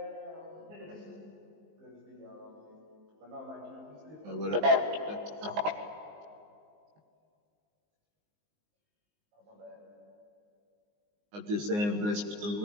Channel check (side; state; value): left; late; 19 ms